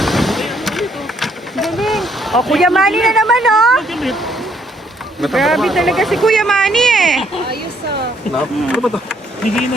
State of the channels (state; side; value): normal; both; correlation 0.69